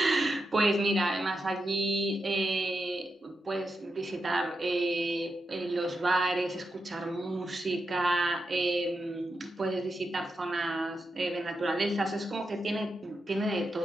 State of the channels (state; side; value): normal; both; correlation 0.87